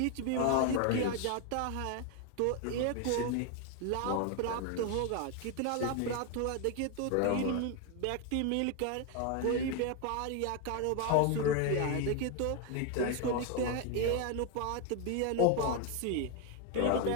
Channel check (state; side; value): different; both; correlation 0.01